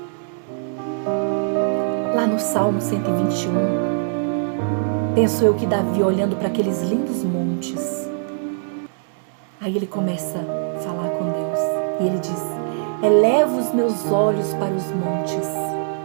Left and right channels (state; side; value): silent; left; digital silence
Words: Lá no Salmo 121, penso eu que Davi, olhando para aqueles lindos montes, aí ele começa a falar com Deus. E ele diz: eleva os meus olhos para os montes,